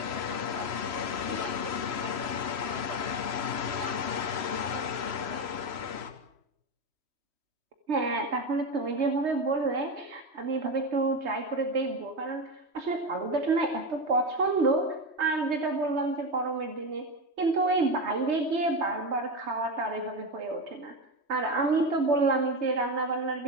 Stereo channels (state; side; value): late; left; 3.1 ms